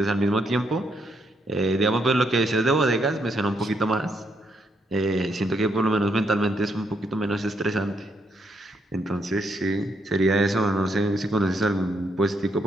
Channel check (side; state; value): both; normal; correlation 0.76